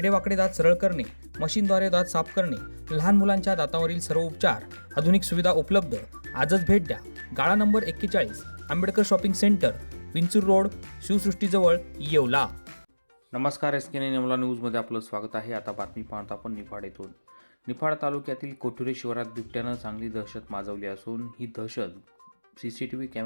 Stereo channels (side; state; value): both; inverted; correlation -1.00